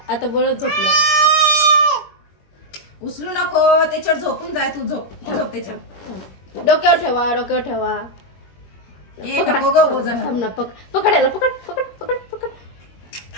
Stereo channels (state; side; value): late; right; 21 ms